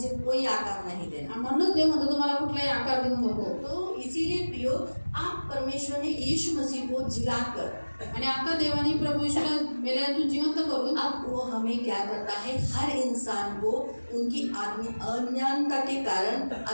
कोई आकार नहीं देना। आणि म्हणूनच देव म्हणतो तुम्हाला कुठलाही आकार देऊ नको. तो इसीलिए प्रियो आप परमेश्वर ने यीशु मसीह को जिलाकर आणि आता देवाने प्रभू यीशूला मेल्यातून जिवंत करून अब वो हमें क्या करता है, हर इंसान को उनकी अज्ञानता के कारण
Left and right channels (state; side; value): inverted; both; correlation -1.00